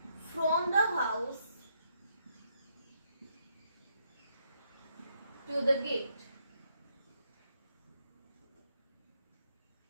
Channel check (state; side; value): inverted; both; correlation -0.76